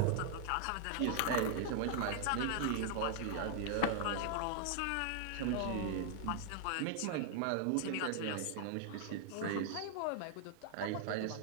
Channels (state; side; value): different; both; correlation 0.00